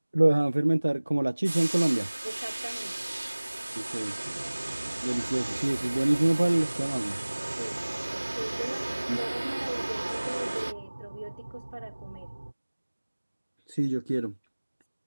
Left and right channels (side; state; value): both; inverted; correlation -1.00